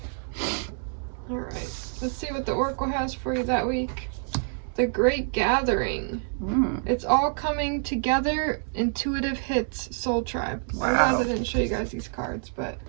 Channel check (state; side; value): silent; left; 60 dB below the other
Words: All right. Let's see what the Oracle has for you that week. The Great Gathering. It's all coming together. Intuitive hits. Soul Tribe. Wow. I realized I didn't show you guys these cards, but